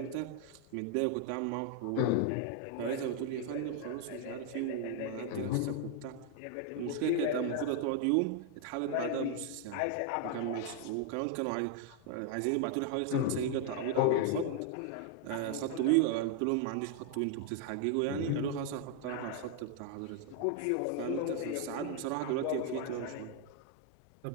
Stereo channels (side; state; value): both; different; correlation 0.00